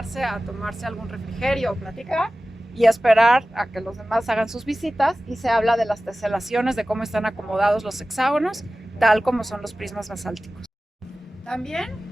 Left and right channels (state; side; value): normal; both; correlation 0.96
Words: a tomarse algún refrigerio o platicar y esperar a que los demás hagan sus visitas, y se habla de las teselaciones, de cómo están acomodados los hexágonos, tal como son los prismas basálticos. También